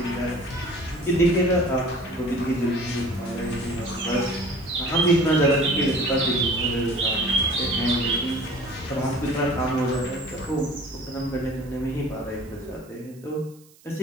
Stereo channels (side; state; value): right; noise; hiss, 27 dB below the sound